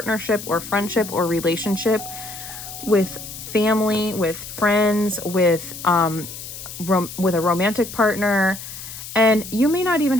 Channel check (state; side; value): noise; left; hiss, 11 dB below the sound